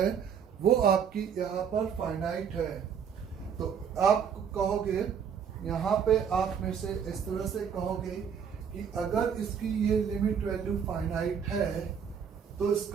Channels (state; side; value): quieter; left; 7.4 dB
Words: वो आपकी यहाँ पर फाइनाइट है। तो आप कहोगे यहाँ पे आप में से इस तरह से कहोगे कि अगर इसकी ये लिमिट वैल्यू फाइनाइट है तो